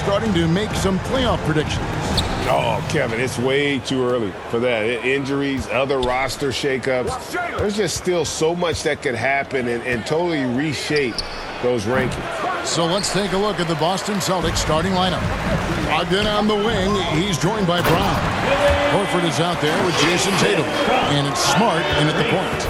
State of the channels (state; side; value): identical; both; correlation 1.00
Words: to make some playoff predictions? Oh, Kevin, it's way too early for that. Injuries, other roster shakeups. There's just still so much that could happen and totally reshape those rankings. So let's take a look at the Boston Celtics starting lineup. Ogden on the wing. He's joined by Brown. Horford is out there with Jason Tatum. And it's Smart in at the point.